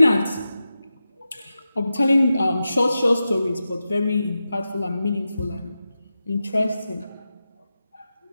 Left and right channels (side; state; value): both; inverted; correlation -0.91